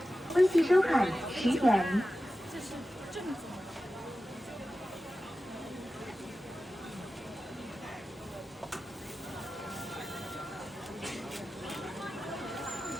微信收款10元。这是正宗的。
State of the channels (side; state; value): both; normal; correlation 0.94